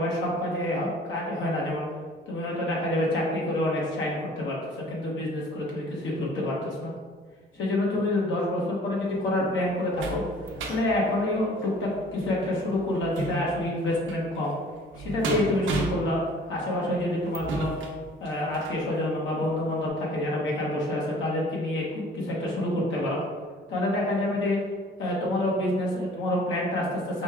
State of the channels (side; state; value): both; normal; correlation 0.51